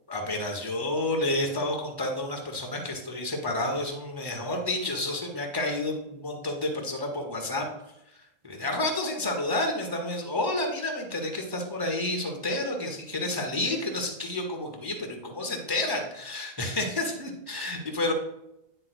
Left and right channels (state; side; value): late; left; 1.2 ms